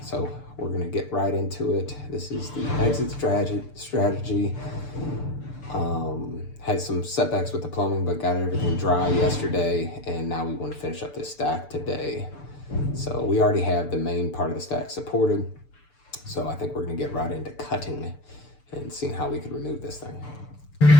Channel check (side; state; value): right; late; 6.8 ms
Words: So we're gonna get right into it. This is the exit strategy. Had some setbacks with the plumbing, but got everything dry yesterday, and now we want to finish up this stack today. So we already have the main part of the stack supported. So I think we're gonna get right into cutting and seeing how we could remove this thing.